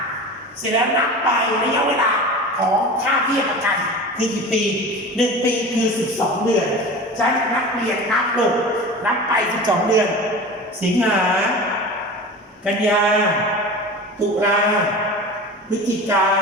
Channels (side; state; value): both; normal; correlation 0.33